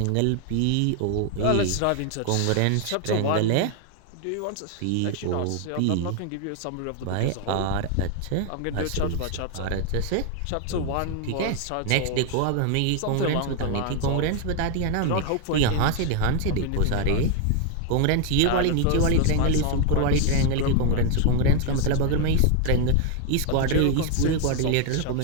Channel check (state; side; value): different; both; correlation 0.00